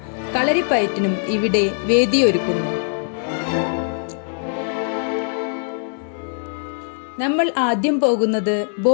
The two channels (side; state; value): right; silent; digital silence